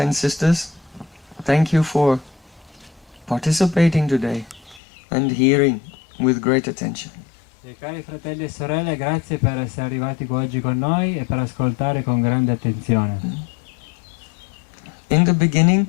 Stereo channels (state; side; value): drops out; right; at 4.8 s